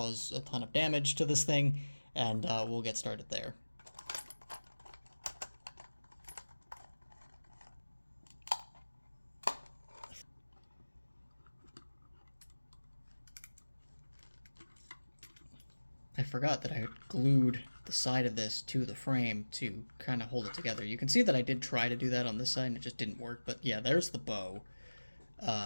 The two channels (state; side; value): inverted; both; correlation -1.00